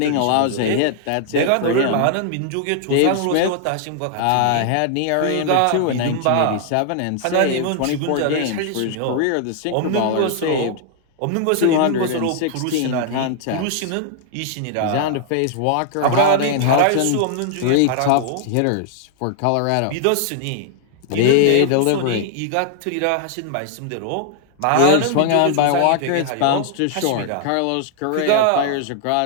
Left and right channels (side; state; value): both; different; correlation 0.00